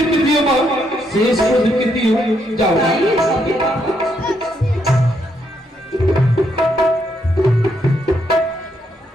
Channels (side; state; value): both; normal; correlation 0.76